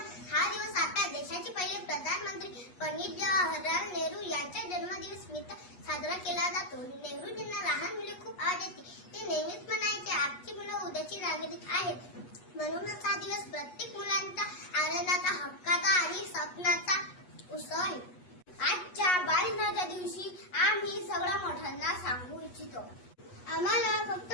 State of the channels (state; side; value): late; right; 8.3 ms